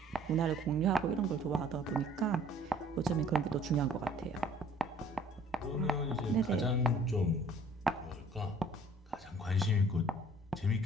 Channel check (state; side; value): normal; both; correlation 0.55